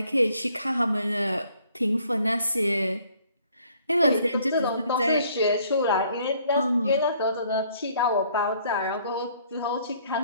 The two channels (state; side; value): inverted; both; correlation -0.62